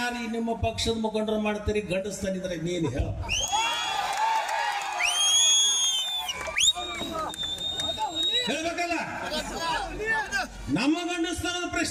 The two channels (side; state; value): both; identical; correlation 1.00